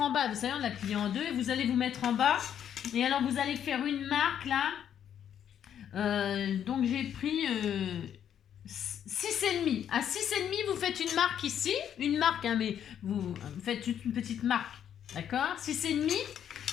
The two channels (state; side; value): quieter; right; 9.4 dB